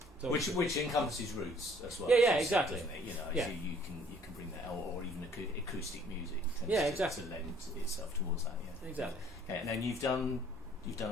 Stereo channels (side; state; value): both; normal; correlation 0.58